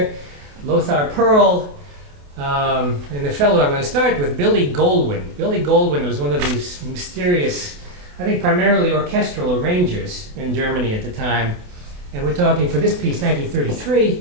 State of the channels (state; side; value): late; left; 28 ms